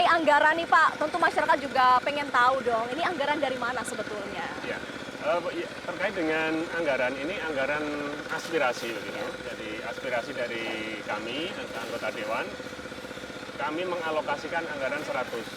anggaran nih Pak, tentu masyarakat juga pengen tahu dong, ini anggaran dari mana sebetulnya? Ya. Terkait dengan anggaran ini anggaran aspirasi begitu. Jadi aspirasi dari kami anggota dewan, kami mengalokasikan anggaran 100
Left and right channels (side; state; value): both; identical; correlation 1.00